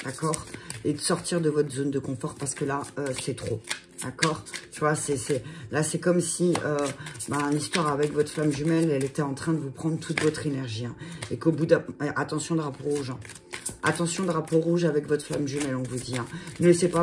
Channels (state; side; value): identical; both; correlation 1.00